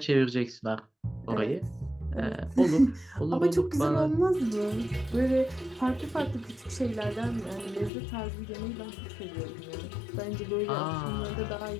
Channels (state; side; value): drops out; right; at 7.9 s